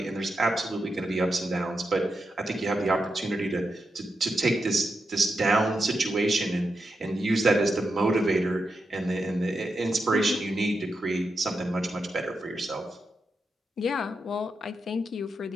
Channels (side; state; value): both; normal; correlation 0.86